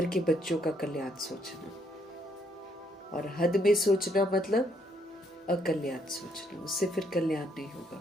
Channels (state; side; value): normal; both; correlation 0.71